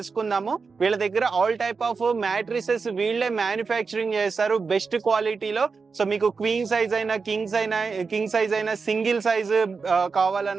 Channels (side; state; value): left; quieter; 4.9 dB